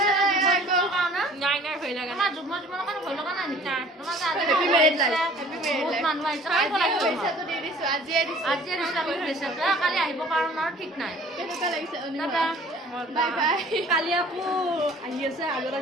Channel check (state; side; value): normal; both; correlation 0.51